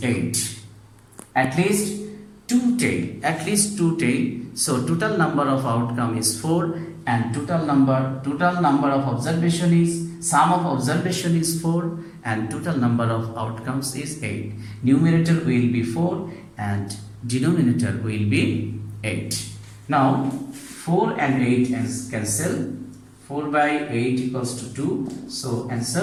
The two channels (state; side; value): identical; both; correlation 1.00